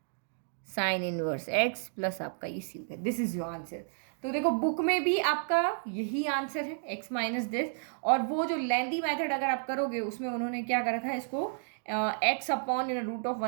sine inverse x plus आपका ये सी हो गया। This is your answer. तो देखो बुक में भी आपका यही आंसर है, एक्स माइनस दिस। और वो जो लेंदी मेथड अगर आप करोगे उसमें उन्होंने क्या कर रखा है, इसको X upon in root of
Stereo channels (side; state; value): left; silent; digital silence